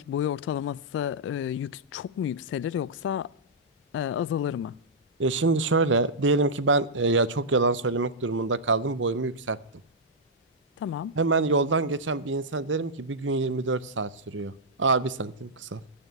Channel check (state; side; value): normal; both; correlation -0.09